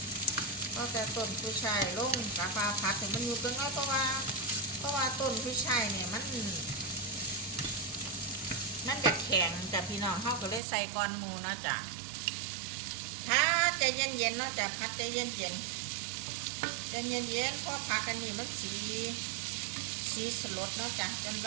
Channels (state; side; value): drops out; left; at 10.6 s